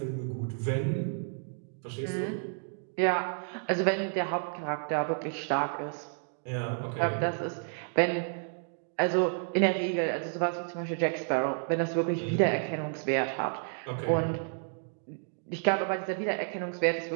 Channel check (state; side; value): silent; left; 56 dB below the other